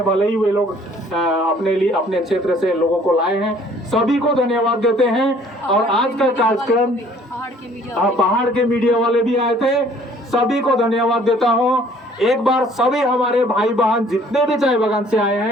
भले ही वे लोग अपने लिए अपने क्षेत्र से लोगों को लाए हैं, सभी को धन्यवाद देते हैं। और आज का कार्यक्रम पहाड़ के मीडिया वाले भी आए थे, सभी को धन्यवाद देता हूं। एक बार सभी हमारे भाई बहन जितने भी चाय बागान से आए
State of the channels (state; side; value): normal; both; correlation 0.57